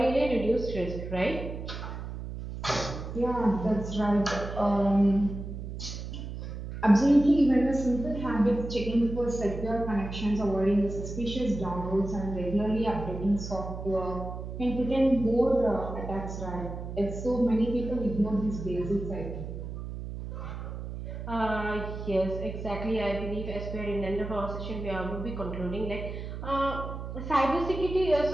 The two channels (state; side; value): noise; right; hum, 8 dB below the sound